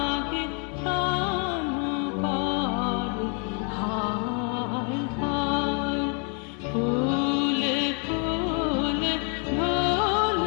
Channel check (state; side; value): quieter; right; 38.3 dB